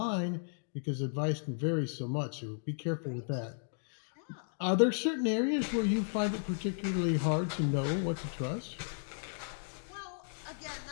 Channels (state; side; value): silent; right; digital silence